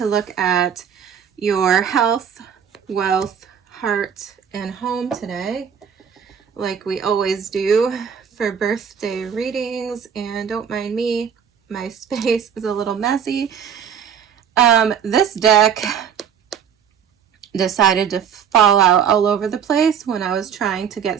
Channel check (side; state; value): left; quieter; 7.8 dB